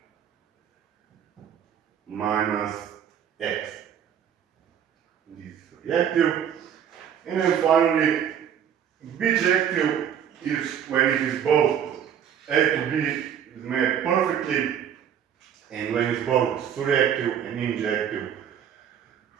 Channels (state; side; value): quieter; left; 9.0 dB